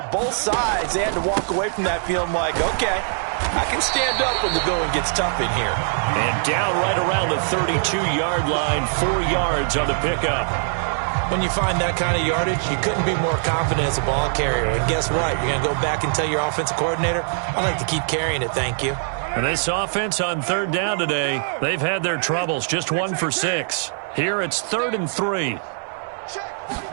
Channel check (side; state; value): left; silent; 64 dB below the other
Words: both sides, they had to walk away from that feeling like, okay, I can stand up when the going gets tough in here. And down right around the 32-yard line, 4 yards on the pickup. When you find that kind of yardage, you couldn't be more confident as a ball carrier. And guess what? You're going to go back and tell your offensive coordinator, I'd like to keep carrying it, thank you. And this offense on 3rd down today, they've had their troubles, just 1 for 6. Here it's 3rd and 3.